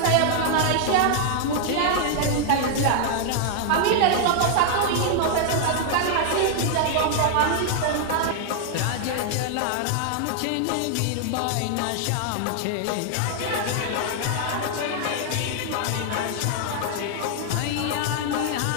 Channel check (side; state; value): both; different; correlation 0.00